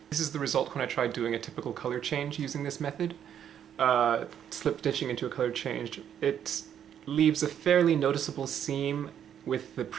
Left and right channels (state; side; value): quieter; left; 9.3 dB